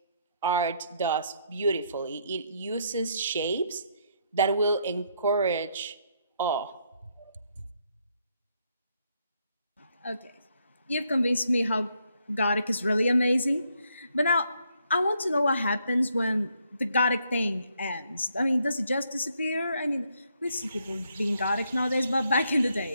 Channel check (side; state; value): both; inverted; correlation -0.73